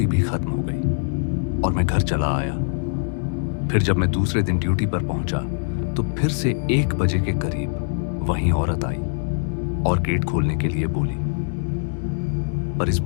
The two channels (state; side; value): silent; right; digital silence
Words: भी खत्म हो गई और मैं घर चला आया। फिर जब मैं दूसरे दिन ड्यूटी पर पहुंचा तो फिर से 1 बजे के करीब वही औरत आई और गेट खोलने के लिए बोली, पर इस